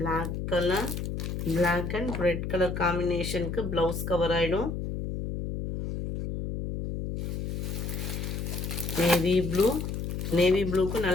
colour. Black and red colour காம்பினேஷனுக்கு பிளவுஸ் கவர் ஆயிடும். Navy blue. நேவி ப்ளூக்கு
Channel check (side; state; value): left; noise; hum, 4 dB below the sound